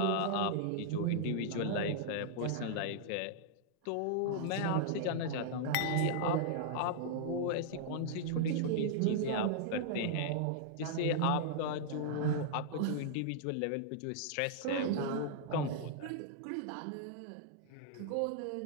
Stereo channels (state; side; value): different; both; correlation -0.01